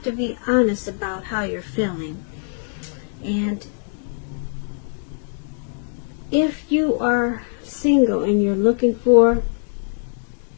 to be honest about how you're feeling. And if you are single and you're looking for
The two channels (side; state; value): right; silent; digital silence